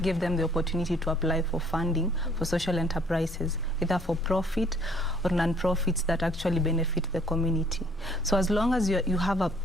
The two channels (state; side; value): normal; both; correlation 0.60